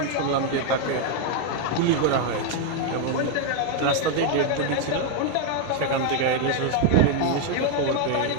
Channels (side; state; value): both; different; correlation 0.01